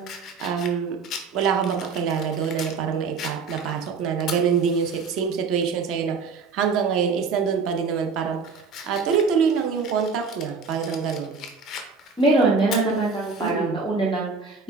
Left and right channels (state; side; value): quieter; left; 4.9 dB